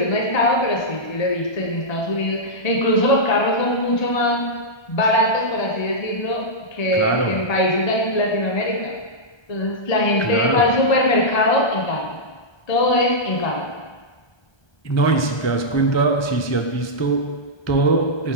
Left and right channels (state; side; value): late; right; 1.3 ms